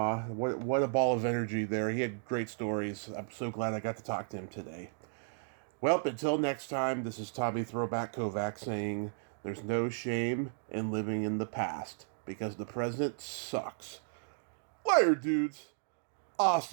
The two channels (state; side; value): silent; left; digital silence